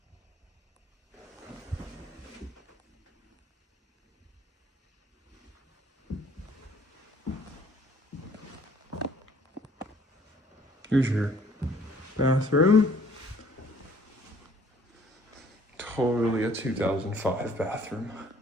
Here's your bathroom. Totally a 2005 bathroom.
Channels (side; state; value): both; normal; correlation 0.58